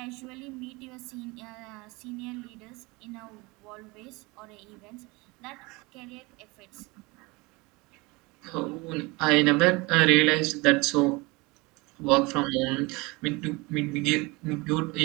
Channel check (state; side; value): quieter; left; 24.9 dB